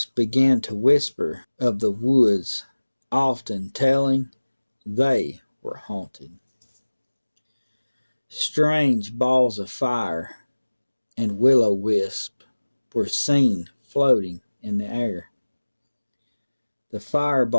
began to whisper of the woods, often telling They were haunted. Strange balls of fire and will-o-wisp were seen floating in the air. The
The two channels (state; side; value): inverted; both; correlation -1.00